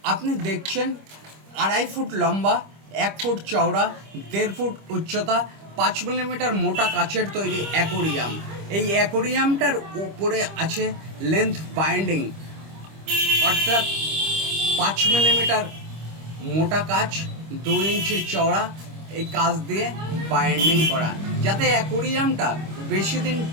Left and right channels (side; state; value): left; late; 25 ms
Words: আপনি দেখছেন 2.5 ফুট লম্বা, 1 ফুট চওড়া, 1.5 ফুট উচ্চতা, 5 মিলিমিটার মোটা কাচের তৈরি অ্যাকোরিয়াম। এই অ্যাকোরিয়ামটার উপরে আছে লেন্থ বাইন্ডিং, অর্থাৎ 5 মিলিমিটার মোটা কাচ, 2 ইঞ্চি চওড়া। এই কাচ দিয়ে বাইন্ডিং করা, যাতে অ্যাকোরিয়ামটা বেশি দিন